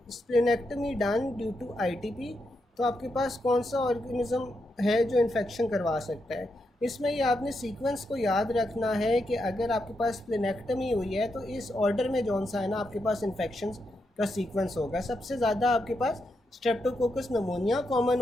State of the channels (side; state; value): both; normal; correlation 0.83